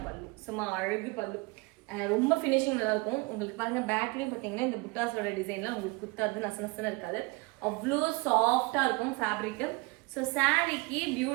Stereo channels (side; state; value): left; quieter; 25.4 dB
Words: பல்லு, சும்மா அழகு பல்லு, ரொம்ப ஃபினிஷிங் நல்லா இருக்கும். உங்களுக்கு பாருங்க பேக்லேயும் பார்த்தீங்கன்னா இந்த புட்டாஸோட டிசைன்லாம் உங்களுக்கு குத்தாது, நசனசன்னு இருக்காது, அவ்வளோ சாஃப்டா இருக்கும் ஃபேப்ரிக்கு. ஸோ சாரீக்கு